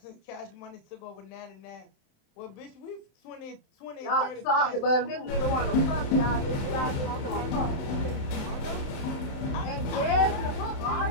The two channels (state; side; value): late; right; 27 ms